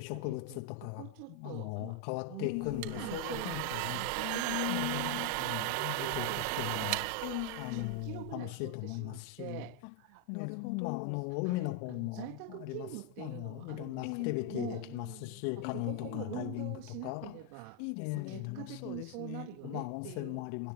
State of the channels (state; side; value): different; both; correlation 0.01